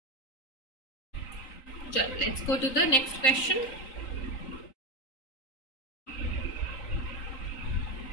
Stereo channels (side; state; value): right; late; 3.9 ms